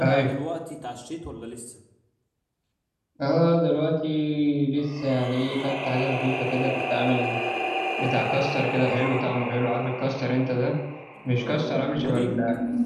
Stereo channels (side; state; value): both; identical; correlation 1.00